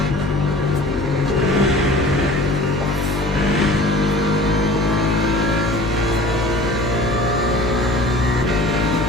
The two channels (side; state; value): left; noise; hum, 8 dB below the sound